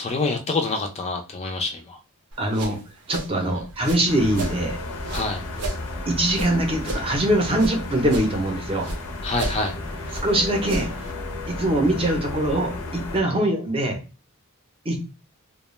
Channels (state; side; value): normal; both; correlation 0.52